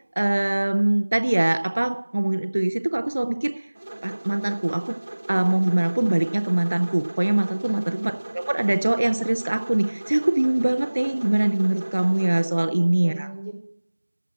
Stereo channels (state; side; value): inverted; both; correlation -1.00